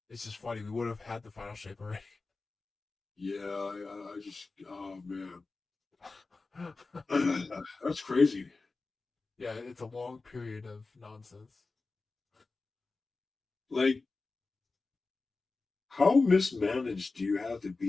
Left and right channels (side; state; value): right; quieter; 3.8 dB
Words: it's just funny. We would have had the final shape already. Yeah, I just, oh man, that's crazy. Yeah, it's a long period of nonsense. Like, how mismanaged do you have to